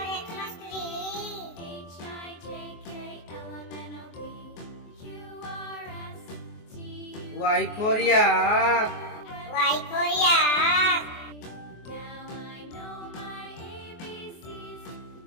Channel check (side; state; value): right; late; 24 ms